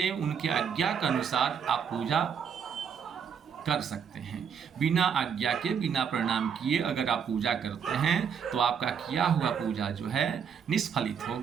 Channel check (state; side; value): quieter; left; 7.2 dB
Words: उनके आज्ञा के अनुसार आप पूजा कर सकते हैं। बिना आज्ञा के, बिना प्रणाम किए अगर आप पूजा करते हैं तो आपका किया हुआ पूजा जो है निष्फलित